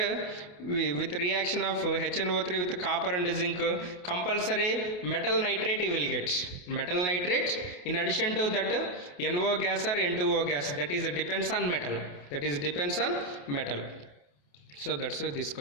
with reaction of HNO3 with copper and zinc? Compulsory metal nitrate you will get. Metal nitrate, in addition to that NO gas or N2O gas, that is depends on metal. That is depends on metal. So that's why this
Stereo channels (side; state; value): right; late; 28 ms